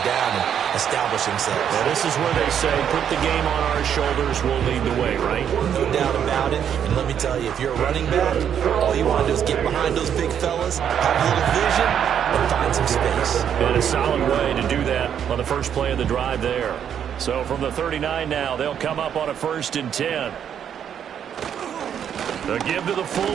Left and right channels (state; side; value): quieter; left; 8.8 dB